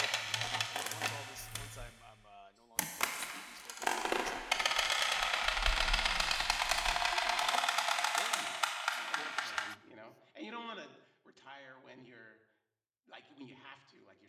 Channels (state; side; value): identical; both; correlation 1.00